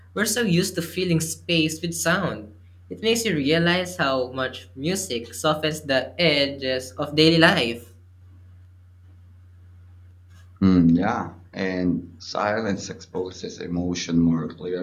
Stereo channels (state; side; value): identical; both; correlation 1.00